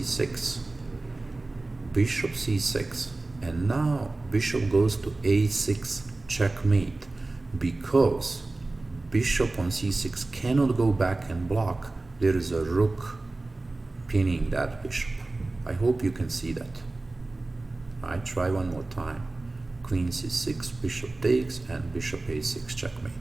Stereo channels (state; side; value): quieter; left; 3.1 dB